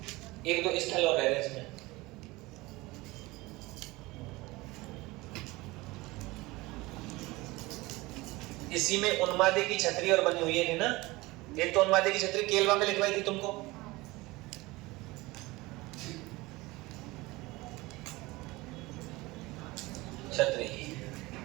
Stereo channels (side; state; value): left; quieter; 21.4 dB